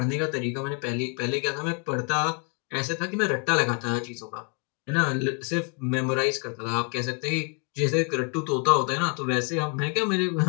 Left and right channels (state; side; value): quieter; right; 37.3 dB